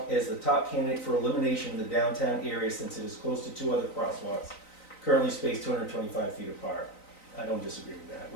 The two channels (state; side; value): late; right; 3.9 ms